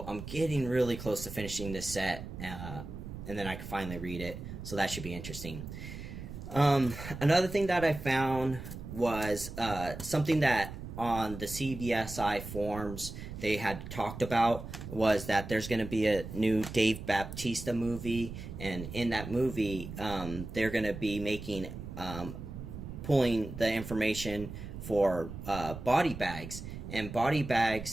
I'm getting really close to finishing this set, and then I can finally read it, so that should be interesting. Another thing that I found was something that on the CBSI forums they had talked about, was that there's going to be a new Dave Bautista movie, and in that movie they're going to be making pulling the information for body bags. And body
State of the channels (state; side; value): noise; right; rumble, 10 dB below the sound